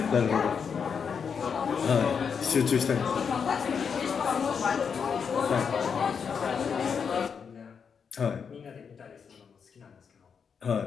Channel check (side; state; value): right; quieter; 6.4 dB